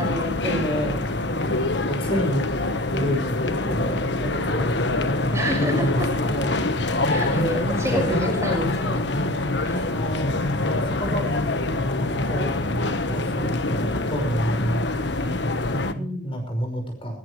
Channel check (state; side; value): normal; both; correlation 0.39